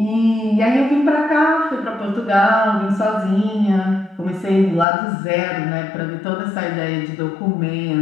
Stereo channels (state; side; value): drops out; right; at 4.9 s